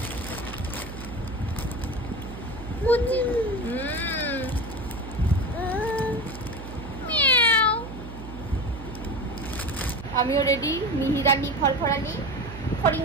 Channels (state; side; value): noise; right; hum, 11 dB below the sound